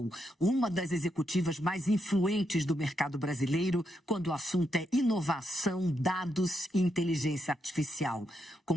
uma das executivas mais influentes do mercado brasileiro quando o assunto é inovação, dados e inteligência artificial. Com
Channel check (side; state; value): both; normal; correlation 0.81